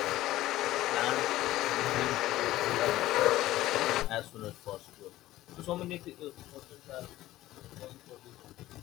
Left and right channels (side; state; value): right; quieter; 15.7 dB